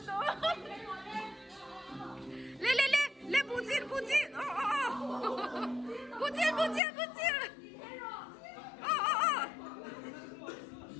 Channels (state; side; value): drops out; right; at 6.8 s